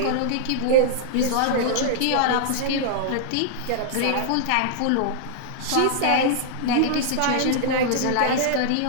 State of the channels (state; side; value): different; both; correlation -0.01